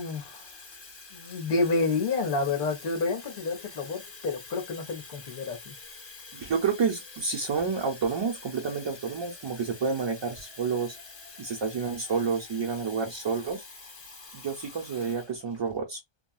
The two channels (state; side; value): late; left; 1.2 ms